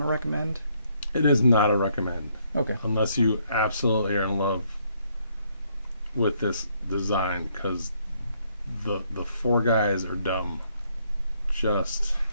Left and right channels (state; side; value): inverted; both; correlation -0.71